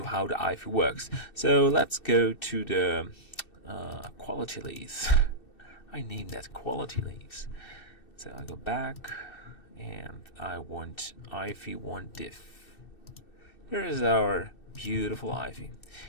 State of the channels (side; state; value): right; late; 2.7 ms